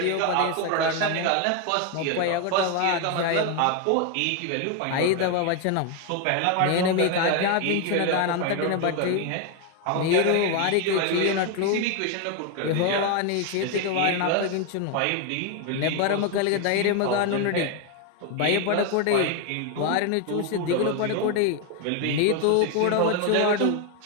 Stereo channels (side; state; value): both; different; correlation 0.01